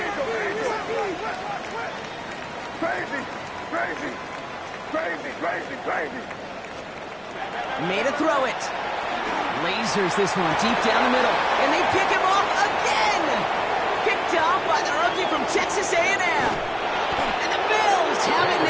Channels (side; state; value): both; identical; correlation 1.00